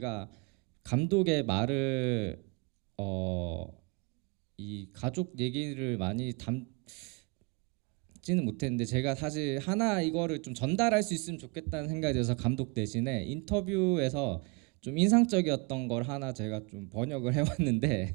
감독의 말을 이 가족 얘기를 많이 담지는 못했는데 제가 사실 하나 이거를 좀 전달할 수 있으면 좋겠다는 생각이 들어서 감독 대신에 인터뷰에서 좀 인상적이었던 걸 하나 제가 좀 번역을 해왔는데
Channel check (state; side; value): quieter; left; 29.3 dB